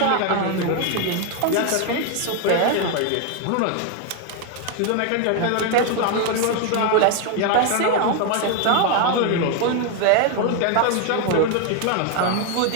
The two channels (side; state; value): both; different; correlation 0.01